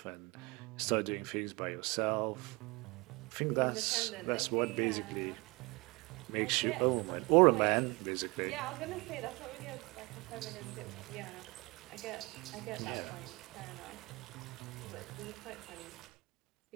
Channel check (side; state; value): left; quieter; 25.9 dB